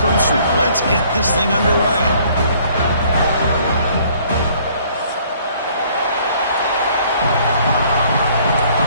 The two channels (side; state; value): both; inverted; correlation -0.59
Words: Let's get this thing underway.